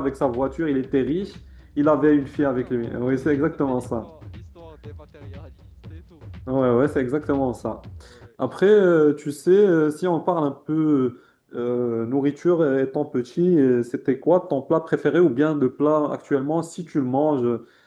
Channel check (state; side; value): identical; both; correlation 1.00